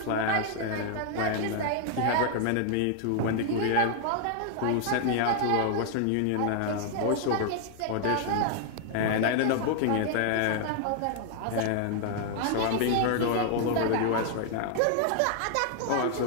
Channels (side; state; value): both; different; correlation 0.00